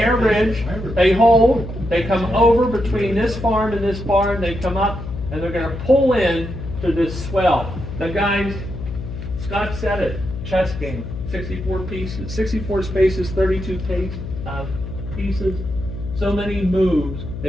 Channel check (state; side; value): noise; left; hum, 8 dB below the sound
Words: Ridge. They hold. They come over between this farm and this barn. They come up and they're going to pull in to this swell. The guys, Scott said it, chess game, 64 pieces, 64 spaces, 32 pieces. So many moves,